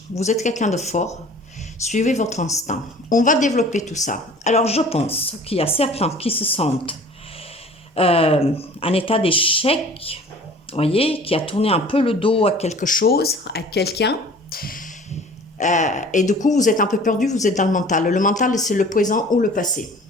Vous êtes quelqu'un de fort. Suivez votre instinct. On va développer tout ça. Alors, je pense qu'il y a certains qui se sentent en état d'échec, voyez, qui a tourné un peu le dos à quelque chose, à quelqu'un. Et du coup, vous êtes un peu perdu, vous êtes dans le mental. Le mental, c'est le présent ou le passé.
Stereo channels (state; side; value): normal; both; correlation 0.46